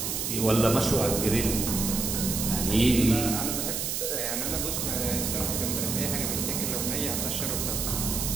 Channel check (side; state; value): right; noise; hiss, 1 dB below the sound